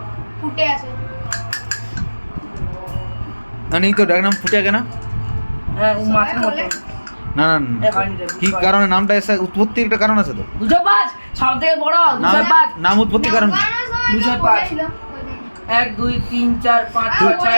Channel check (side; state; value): both; inverted; correlation -1.00